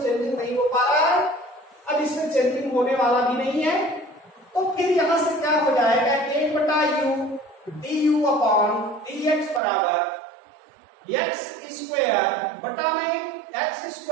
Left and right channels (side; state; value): left; drops out; at 9.6 s